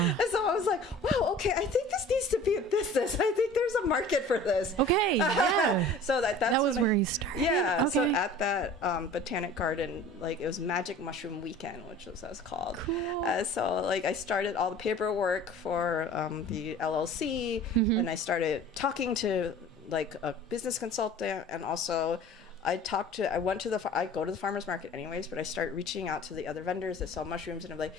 so I was like, wow, okay, I think this needs to be a business. I think there's a market for this. Okay, yeah. So that was where you started. Yeah. Okay. So at that Botanic Garden, like, it was Magic Mushroom Weekend, which was what it was called. Cool. So like I started all the paperwork for the LLC, and I started talking to like a business consultant, and also I go to the farmer's market anyways, but I start reaching out to the other vendors that sell mushrooms, and I'm like,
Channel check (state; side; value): normal; both; correlation 0.44